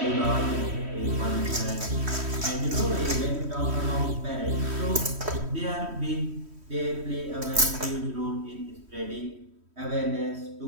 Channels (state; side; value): late; left; 3.1 ms